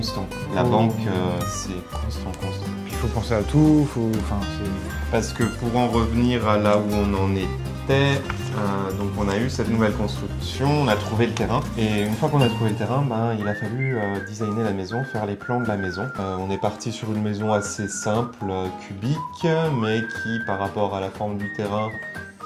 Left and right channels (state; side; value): identical; both; correlation 1.00